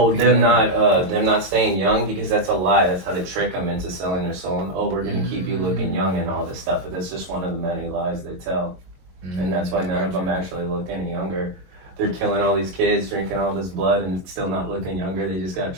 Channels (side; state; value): left; late; 22 ms